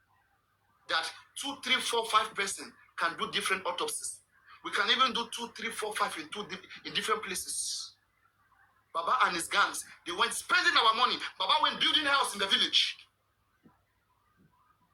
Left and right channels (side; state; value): both; identical; correlation 1.00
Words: that 2, 3, 4, 5 person can do different autopsies. We can even do 2, 3, 4, 5 in different places. Baba and his gangs, they went spending our money. Baba went building a house in the village.